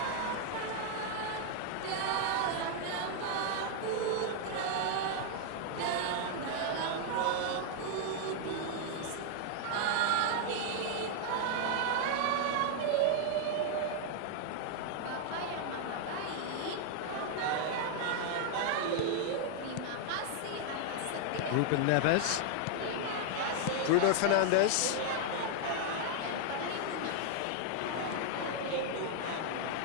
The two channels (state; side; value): different; both; correlation 0.00